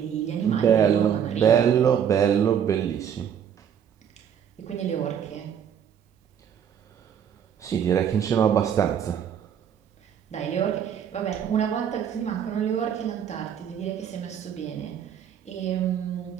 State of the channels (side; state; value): left; quieter; 8.6 dB